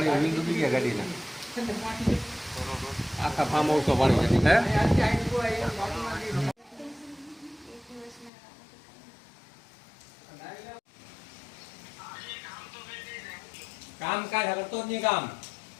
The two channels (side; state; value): right; drops out; at 8.3 s